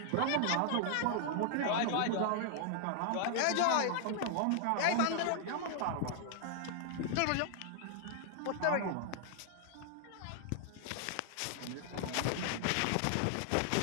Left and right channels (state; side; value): different; both; correlation 0.00